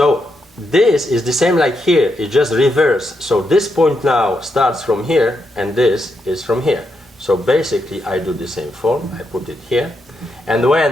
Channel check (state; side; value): normal; both; correlation 0.82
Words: this is the same like here, it's just reverse. So this point now starts from here and this is from here. So basically I do the same form, I put it here. And